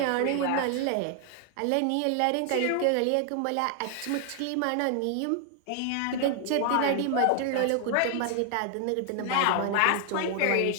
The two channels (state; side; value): different; both; correlation 0.00